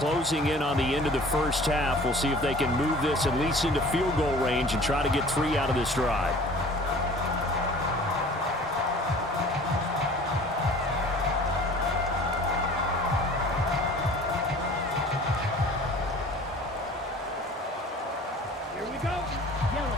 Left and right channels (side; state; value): both; normal; correlation 0.46